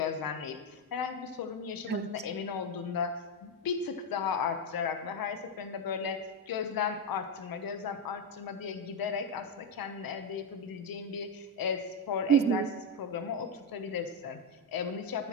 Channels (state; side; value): normal; both; correlation 0.06